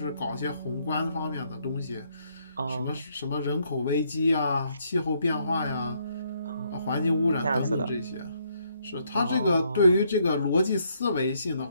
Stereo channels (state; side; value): inverted; both; correlation -0.72